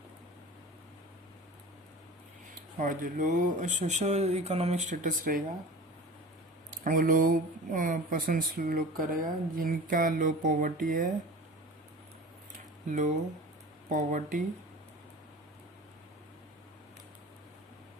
और जो लो सोशल इकोनॉमिक स्टेटस रहेगा वो लो पर्सन्स लोग का रहेगा जिनका लो पॉवर्टी है,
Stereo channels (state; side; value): normal; both; correlation 0.37